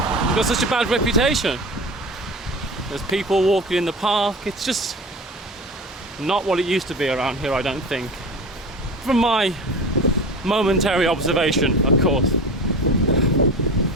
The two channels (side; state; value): both; normal; correlation 0.32